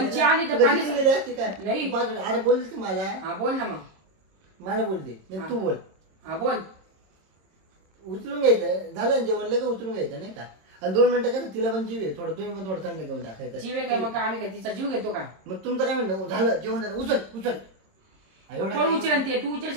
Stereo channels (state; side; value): late; left; 26 ms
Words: घ्यायचं आली ना? तर तू पाणी- कधी गेली असती काय नाही. तू बाजूला- अरे बोलली ती मला हा बोल ना मग. मला बोलते नाही तू बोल हा बोल. उचलून घ्यायचं झालं ना जेवण लगेच उचलून घ्यायचं नाही का आणि 2 मिनिटं कसं तिला पण जीव आहे थोडं तुम्ही पण थोडं थंड घेऊन टाकायचं जीव आहे काय मग आम्ही काय तिचा जीव घेतो का? मग तुमचं काय म्हणणं झालं जेवण झालं उचल एवढं कोण उचल ते तू